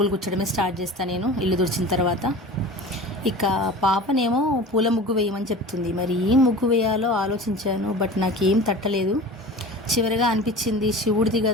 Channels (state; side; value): normal; both; correlation 0.36